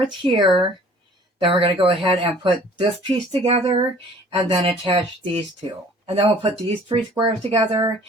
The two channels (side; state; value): both; normal; correlation 0.52